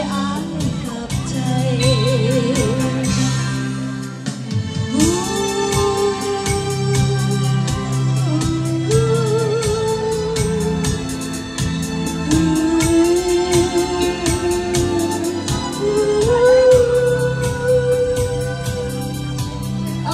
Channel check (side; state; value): both; identical; correlation 1.00